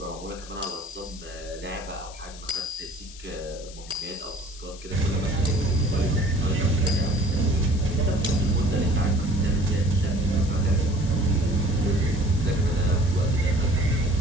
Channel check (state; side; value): noise; left; hiss, 17 dB below the sound